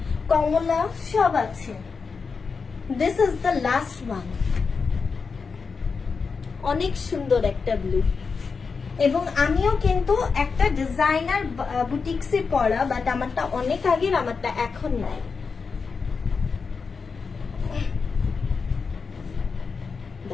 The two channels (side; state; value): right; quieter; 5.1 dB